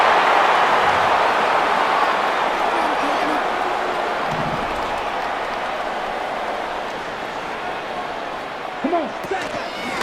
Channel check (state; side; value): identical; both; correlation 1.00